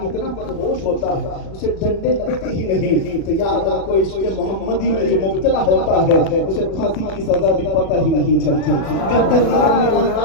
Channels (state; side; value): late; right; 37 ms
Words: اتنا مدہوش ہوتا ہے اسے ڈنڈے لگتے ہی نہیں، تو یاد رکھو عشق محمدی میں جو مبتلا ہوتا ہے اسے پھانسی کی سزا بھی پتہ ہی نہیں چلتی، گردن نکلنے کا